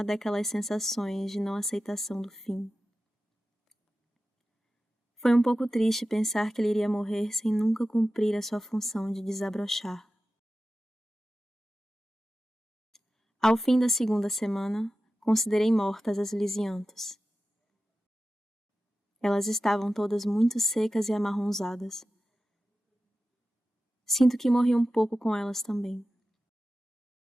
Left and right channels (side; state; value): both; normal; correlation 0.93